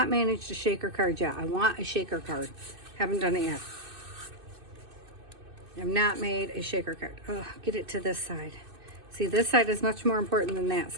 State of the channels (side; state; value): left; late; 2.6 ms